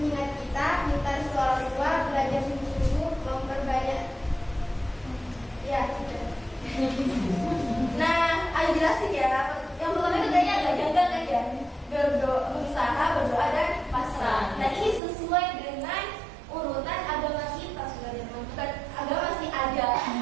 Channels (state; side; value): drops out; left; at 15.0 s